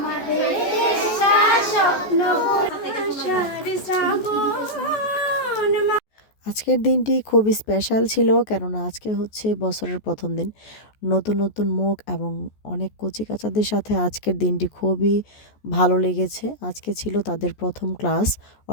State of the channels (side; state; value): right; late; 14 ms